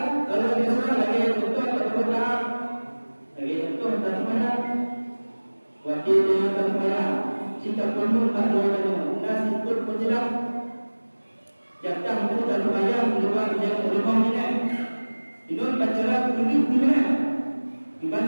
kalau biasa lagi untuk berdoa lagi untuk bagaimana wakil dengan bagaimana jika perlu bagaimana nasi pun penjelas jatah itu dan bayang luar yang rumah ini ini baca ini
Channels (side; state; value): both; inverted; correlation -1.00